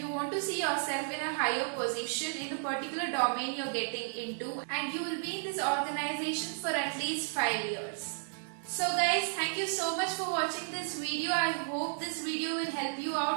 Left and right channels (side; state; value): left; silent; digital silence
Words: want to see yourself in a higher position in the particular domain you're getting into and you will be in this organization for at least 5 years. So guys, thank you so much for watching this video. I hope this video will help you